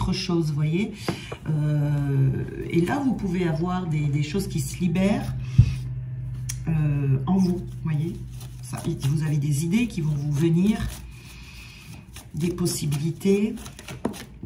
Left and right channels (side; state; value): both; identical; correlation 1.00